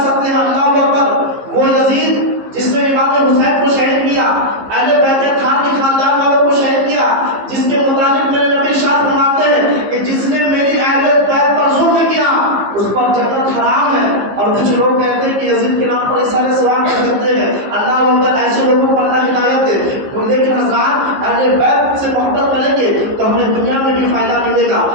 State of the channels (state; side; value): late; left; 15 ms